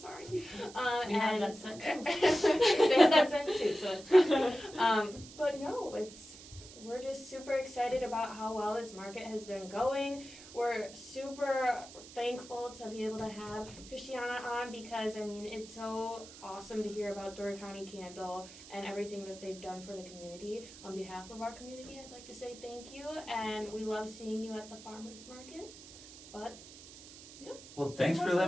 sorry. We have and that scent too. they have that scent too, so it's fine. But no, we're just super excited about how well this market has been going. We're super thankful to be able to have Christiana on because, I mean, it's so awesome to hear about Door County Candle and everything that they've done for the community. On behalf of our community, I'd like to say thank you, and we love seeing you at the farmers market. But Well, thanks for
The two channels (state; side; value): noise; right; hiss, 17 dB below the sound